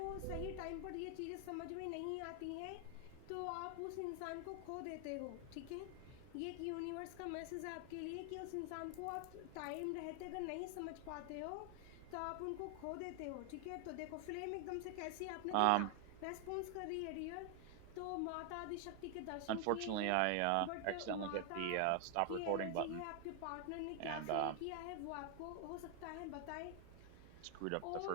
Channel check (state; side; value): different; both; correlation 0.00